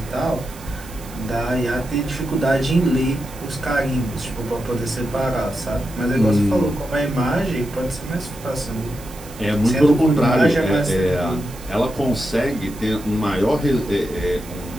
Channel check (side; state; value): right; noise; hiss, 19 dB below the sound